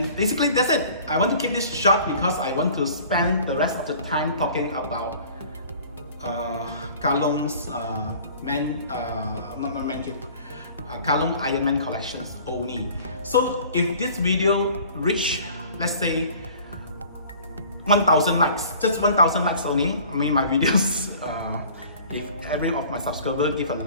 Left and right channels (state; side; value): inverted; both; correlation -0.48